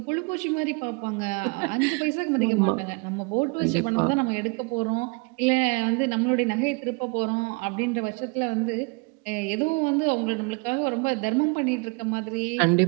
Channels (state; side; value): quieter; left; 30.5 dB